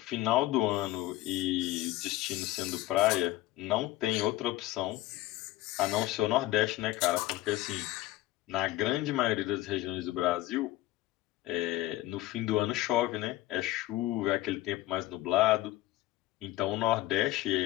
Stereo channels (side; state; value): right; quieter; 16.3 dB